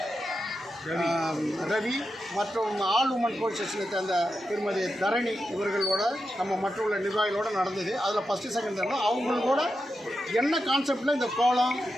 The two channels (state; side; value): normal; both; correlation 0.88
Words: Ravi மற்றும் ஆல் உமன் போலீஸ் ஸ்டேஷனை சேர்ந்த திருமதி தரணி இவர்களோட நம்ம மற்ற நிர்வாகிகளோடு நடந்தது. அதில் ஃபஸ்ட்டு செகண்ட் தேர்டில் அவங்களோட என்ன கான்செப்டில் இந்த கோலம்,